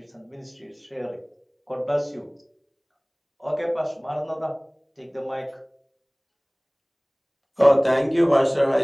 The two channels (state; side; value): identical; both; correlation 1.00